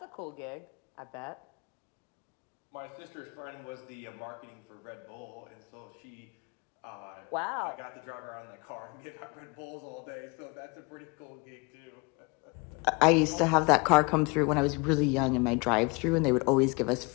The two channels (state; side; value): quieter; right; 28.9 dB